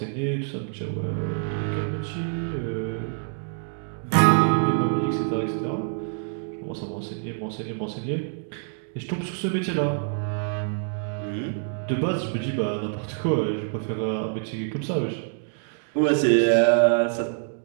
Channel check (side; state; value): left; silent; digital silence